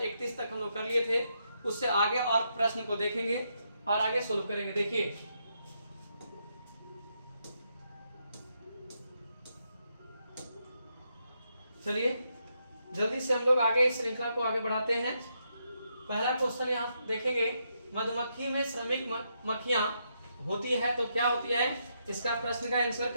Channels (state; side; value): inverted; both; correlation -0.80